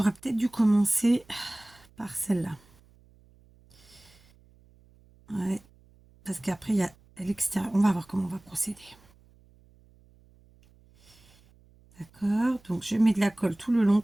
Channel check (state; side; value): noise; right; hum, 29 dB below the sound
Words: peut-être dû commencer par celle-là. Ouais, parce qu'après il y a à l'extérieur. On va voir comment on va procéder. D'accord, donc je mets de la colle tout le long